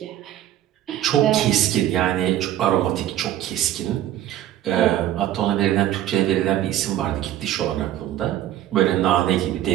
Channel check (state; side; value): quieter; left; 12.4 dB